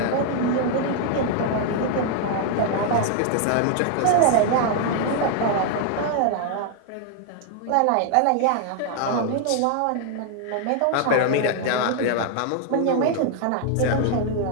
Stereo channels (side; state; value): both; different; correlation 0.00